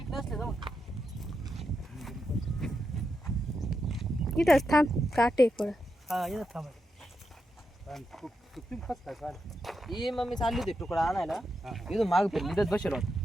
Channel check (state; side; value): normal; both; correlation 0.86